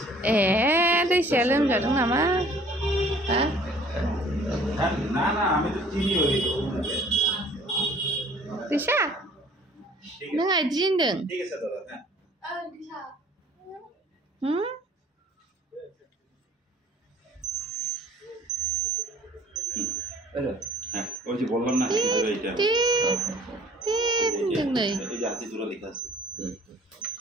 দিছে লোমজাদों নামা হ্যাঁ না না আমি তো চিনি ওই দিশা नों आइदिनदों ঠিক আছে দাদা হ্যাঁ दिशा হ্যাঁ ওই যে বললাম না এইটা এই যে হাতি জোড়া লেখা আছে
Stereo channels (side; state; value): both; normal; correlation 0.54